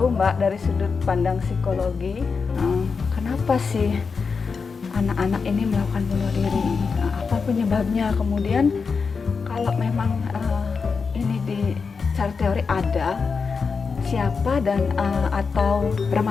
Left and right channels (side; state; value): right; quieter; 5.1 dB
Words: Mbak, dari sudut pandang psikologi, kenapa sih anak-anak ini melakukan bunuh diri? Apa penyebabnya? Kemudian kalau memang ini di secara teori ada, siapa dan atau